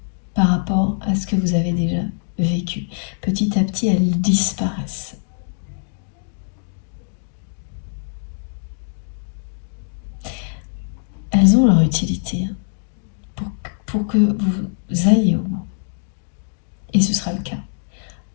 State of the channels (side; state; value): right; silent; digital silence